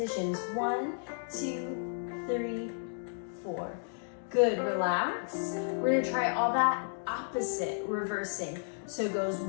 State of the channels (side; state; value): right; silent; digital silence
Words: 1, 2, 3, 4. Good, relax. We're gonna try all that opposite, reversing. So it goes